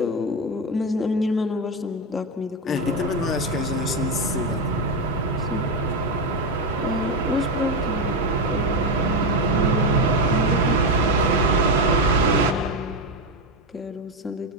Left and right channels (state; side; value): normal; both; correlation 0.11